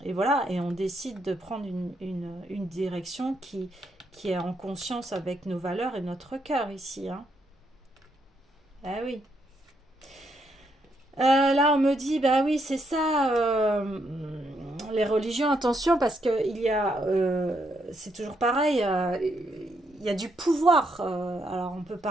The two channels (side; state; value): both; normal; correlation 0.77